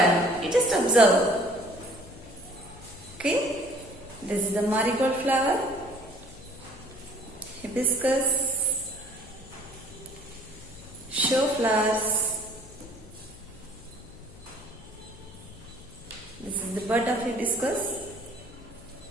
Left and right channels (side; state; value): left; noise; hum, 19 dB below the sound